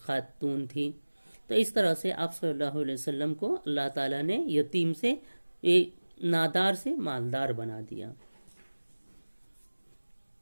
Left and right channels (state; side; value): inverted; both; correlation -1.00